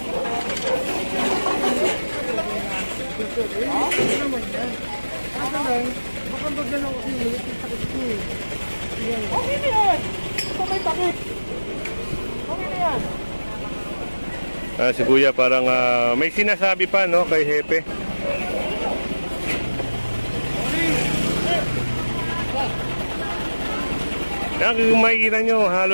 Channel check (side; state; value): both; inverted; correlation -1.00